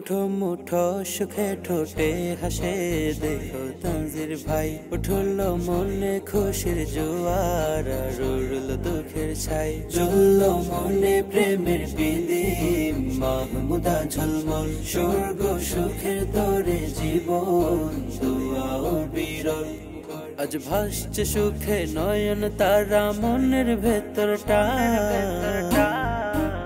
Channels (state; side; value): identical; both; correlation 1.00